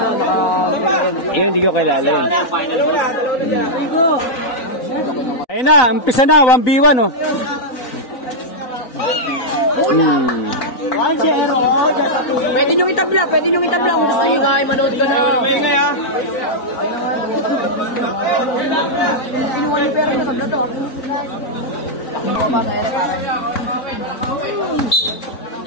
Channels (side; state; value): right; late; 3.9 ms